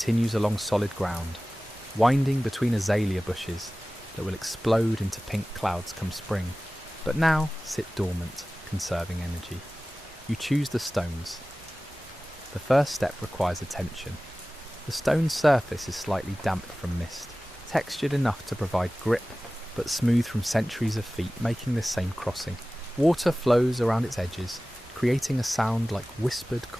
along solid ground, winding between azalea bushes that will explode into pink clouds come spring, but now sit dormant, conserving energy. You choose the stones. The first step requires attention. The stone's surface is slightly damp from mist, textured enough to provide grip, but smooth from centuries of feet making this same crossing. Water flows around its edges, creating a sound like whispered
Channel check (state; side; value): normal; both; correlation 0.97